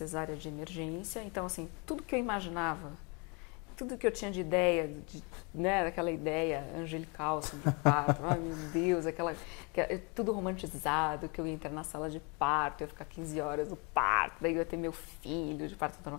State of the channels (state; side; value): quieter; right; 32.0 dB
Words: de emergência, então assim, tudo que eu imaginava, tudo que eu tinha de ideia, daquela ideia angelical sobre o parto, ai meu Deus, tudo romantizado, que eu ia entrar na sala de parto, eu ia ficar 15 horas no parto, daí eu ia ter meu filho de parto normal,